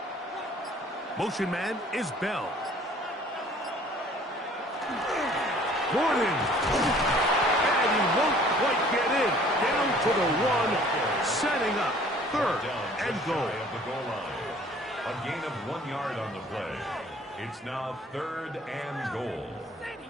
Motion man is Bell. Gordon. And he won't quite get in. Down to the 1. Setting up third and goal. A gain of 1 yard on the play. It's now third and goal.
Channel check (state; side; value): normal; both; correlation 0.54